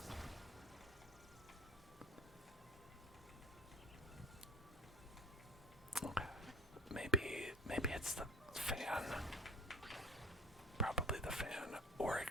Okay. Maybe it's the fan. Probably the fan. Or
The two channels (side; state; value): both; normal; correlation 0.42